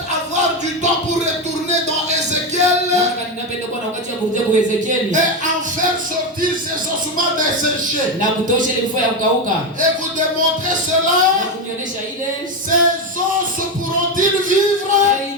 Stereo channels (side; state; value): both; normal; correlation 0.12